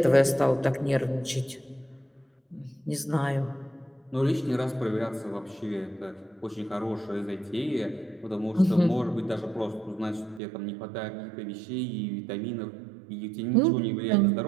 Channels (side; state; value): left; drops out; at 10.4 s